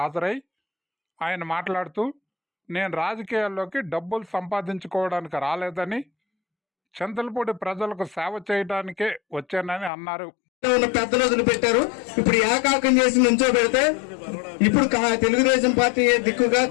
ఆయన మాట్లాడుతూ, నేను రాజకీయాల్లోకి డబ్బులు సంపాదించుకోవడానికి రాలేదని, చింతలపూడి ప్రజలకు సేవ చేయడానికే వచ్చానని అన్నారు. పెద్దలు వదిలిపెట్టారు. ఇప్పుడు ఏకాకం చేసి నుంచో పెడితే ఇప్పుడు తెలుగుదేశం పార్టీ దిక్కుగా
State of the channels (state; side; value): drops out; right; at 9.9 s